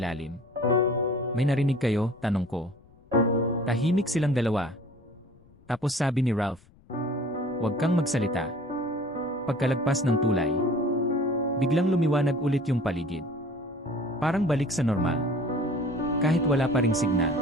May narinig kayo? Tanong ko. Tahimik silang dalawa. Tapos sabi ni Ralph, huwag kang magsalita. Pagkalagpas ng tulay, biglang lumiwanag ulit yung paligid. Parang balik sa normal. Kahit wala pa ring signal.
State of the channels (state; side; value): noise; left; rumble, 28 dB below the sound